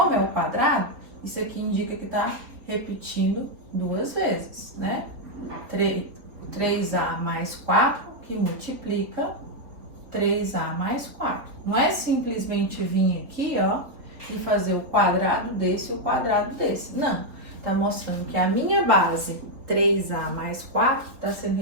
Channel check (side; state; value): left; late; 4.1 ms